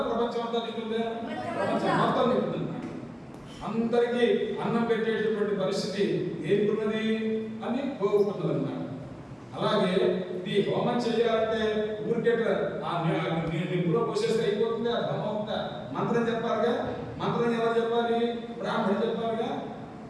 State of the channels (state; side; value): identical; both; correlation 1.00